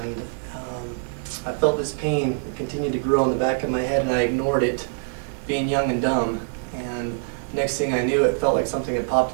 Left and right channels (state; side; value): silent; left; 61 dB below the other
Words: I felt this pain. It continued to grow in the back of my head, and I ignored it, being young and dumb. And next thing I knew, it felt like something had